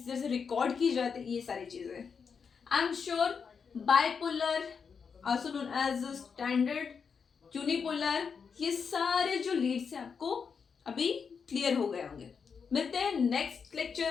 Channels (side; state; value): right; quieter; 6.0 dB